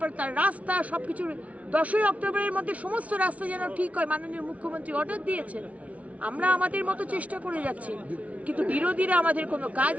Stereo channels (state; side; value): late; left; 0.067 ms